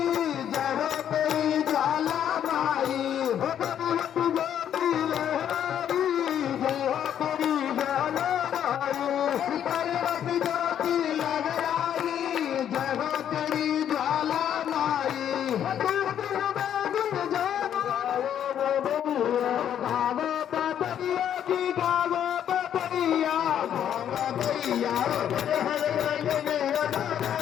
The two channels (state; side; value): quieter; right; 9.7 dB